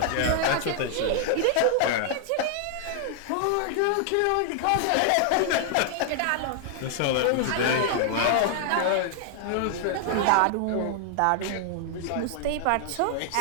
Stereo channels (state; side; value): different; both; correlation 0.00